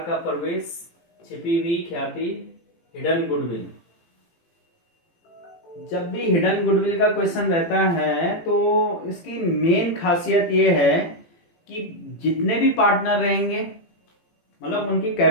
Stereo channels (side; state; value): right; late; 18 ms